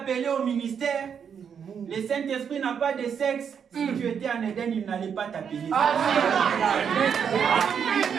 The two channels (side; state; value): left; quieter; 7.4 dB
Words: au ministère. Le Saint-Esprit n'a pas de sexe. Si tu étais en Éden, il n'allait pas t'appeler. Il a